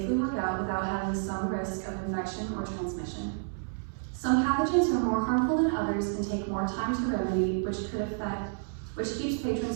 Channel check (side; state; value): left; silent; digital silence